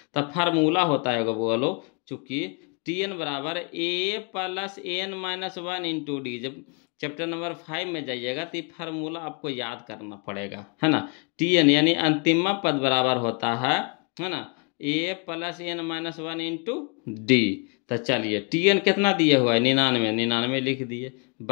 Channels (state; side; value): quieter; right; 35.7 dB